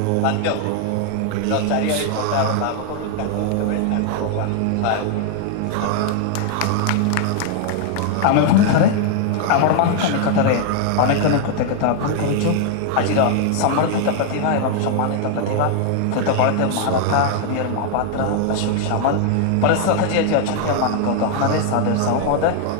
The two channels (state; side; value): different; both; correlation 0.00